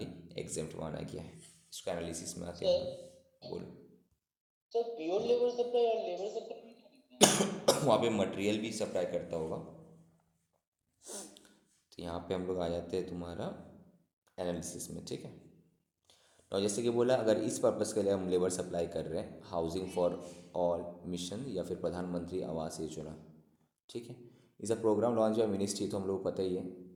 exempt माना गया है। इसका एनालिसिस में आते हैं हम सर लोग। बोलो। सर प्योर लेबर सप्लाई और लेबर सप्लाई में क्या डिफरेंस है? वहाँ पे मटेरियल भी सप्लाई करता होगा। तो यहाँ पे हम लोग आ जाते हैं तुम्हारा एनालिसिस में, ठीक है। और जैसे कि बोला, अगर इस पर्पज़ के लिए हम लेबर सप्लाई कर रहे हैं, हाउसिंग फॉर ऑल मिशन या फिर प्रधानमंत्री आवास योजना, ठीक है। इस प्रोग्राम लॉन्च बाय मिनिस्ट्री, तो हम लोग को पता ही है,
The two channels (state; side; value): identical; both; correlation 1.00